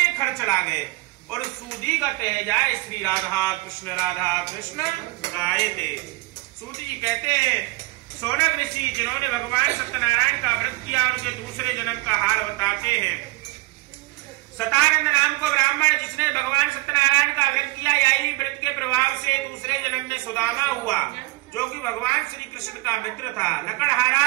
खर्च लागे, और सूदी गत है जाए श्री राधा कृष्ण गाये थे। सूदी जी कहते हैं सोनक ऋषि जिन्होंने भगवान सत्यनारायण का व्रत किया उनके दूसरे जन्म का हाल बताते हैं। सतानंद नाम को ब्राह्मण जिसने भगवान सत्यनारायण का व्रत किया, यही व्रत के प्रभाव से दूसरे जन्म में सुदामा हुआ, जो कि भगवान श्री कृष्ण का मित्र था। लकड़हारा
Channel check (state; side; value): quieter; left; 21.7 dB